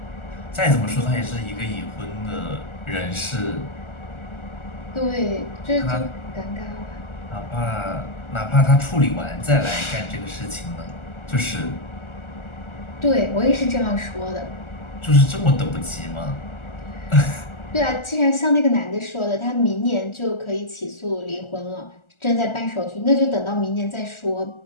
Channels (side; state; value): right; late; 1.4 ms